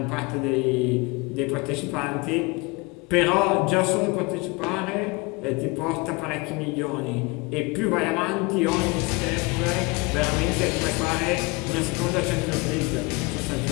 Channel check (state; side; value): quieter; right; 26.2 dB